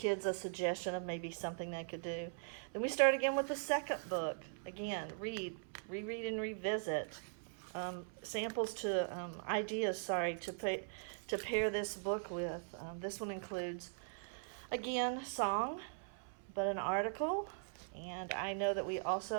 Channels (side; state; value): left; silent; 51 dB below the other